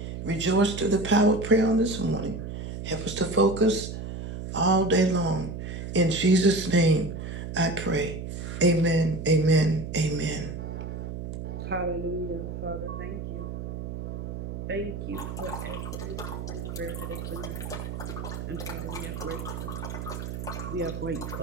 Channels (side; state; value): right; noise; hum, 7 dB below the sound